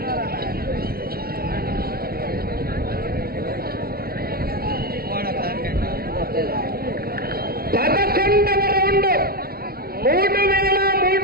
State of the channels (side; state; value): left; late; 0.44 ms